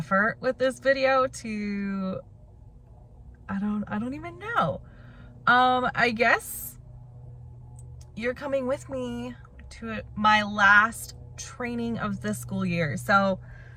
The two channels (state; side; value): identical; both; correlation 1.00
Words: with this video to, I don't even know. I guess you're coming with me to my last training of this school year. So,